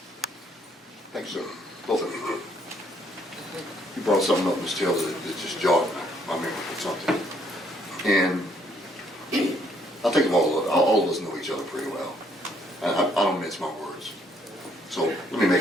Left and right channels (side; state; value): both; normal; correlation 0.67